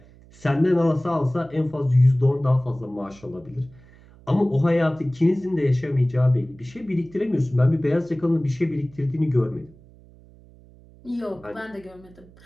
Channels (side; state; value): right; noise; hum, 25 dB below the sound